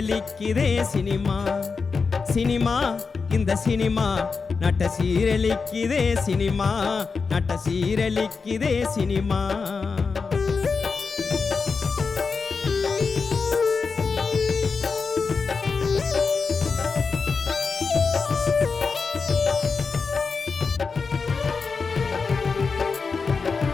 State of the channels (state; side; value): quieter; right; 4.9 dB